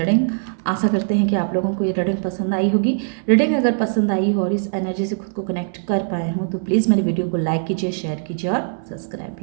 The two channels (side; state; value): left; silent; digital silence